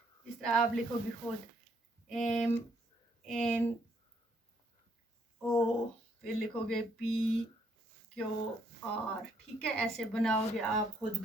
इस तरह आप लिखोगे खुद, एम एन ओ, फिर लिखोगे पी क्यू आर, ठीक है, ऐसे बनाओगे आप खुद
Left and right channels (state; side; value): normal; both; correlation 0.70